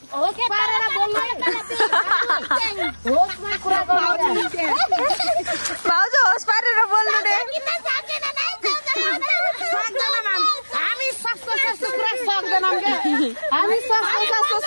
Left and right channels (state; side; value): inverted; both; correlation -1.00